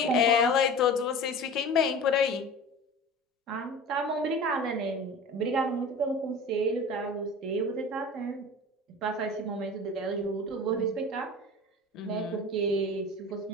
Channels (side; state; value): both; normal; correlation 0.36